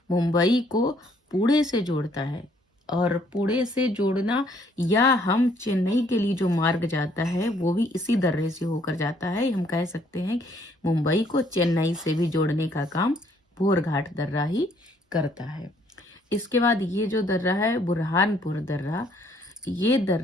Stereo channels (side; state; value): both; normal; correlation 0.65